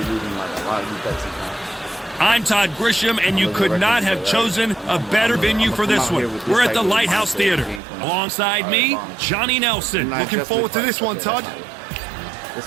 losing like a lot of these bets sometimes. I'm Todd Grisham, and you could not have chosen a better venue for this one. We're at the Lighthouse Theater. Alongside me, Johnny Nelson. Looking forward to this one, Todd. This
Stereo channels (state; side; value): drops out; left; at 7.8 s